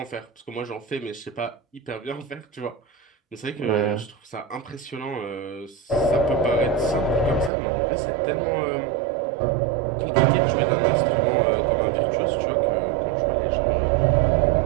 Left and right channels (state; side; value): drops out; left; at 7.5 s